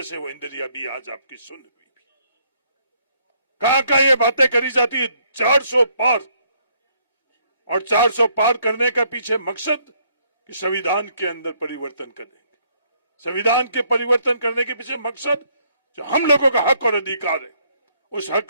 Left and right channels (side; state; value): both; inverted; correlation -0.69